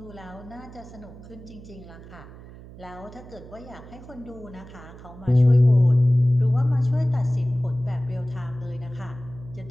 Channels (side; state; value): right; noise; hum, 17 dB below the sound